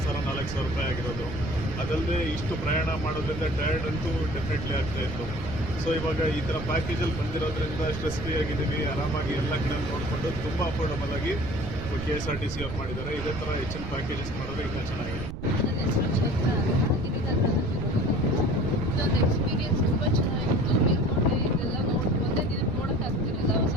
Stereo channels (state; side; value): noise; right; rumble, 8 dB below the sound